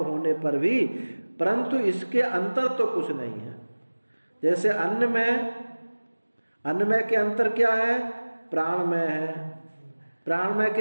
होने पर भी, परंतु इसके अंतर तो कुछ नहीं है। जैसे अन्नमय के अंतर क्या है? प्राणमय है। प्राणमय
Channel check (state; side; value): inverted; both; correlation -1.00